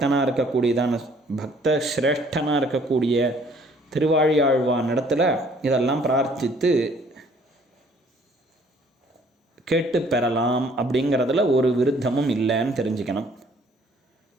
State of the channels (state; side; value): normal; both; correlation 0.59